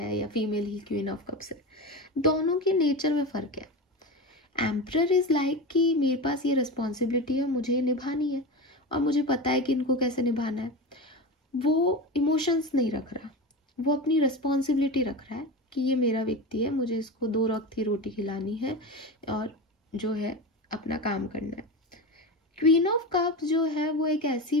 या female he queen of cups है, दोनों के नेचर में फर्क है। एम्परर इज लाइक कि मेरे पास ये रिस्पॉन्सिबिलिटी है, मुझे ये निभानी है और मुझे पता है कि इनको कैसे निभाना है। वो इमोशंस नहीं रख रहा, वो अपनी रिस्पॉन्सिबिलिटी रख रहा है कि ये मेरा व्यक्ति है, मुझे इसको 2 वक्त की रोटी खिलानी है और जो है अपना काम करना है। क्वीन ऑफ कप्स जो है वो एक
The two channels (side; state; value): both; normal; correlation 0.24